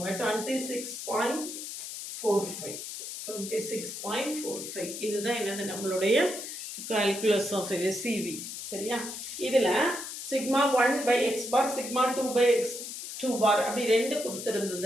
26.45. 26.45 இதுதான் என்னது நம்மளுடைய கால்குலஸ் ஆஃப் சிவி. சரியா? இதில் சிக்மா 1/x பார், சிக்மா 2/x2 பார் அப்படி ரெண்டு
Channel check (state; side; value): noise; left; hiss, 8 dB below the sound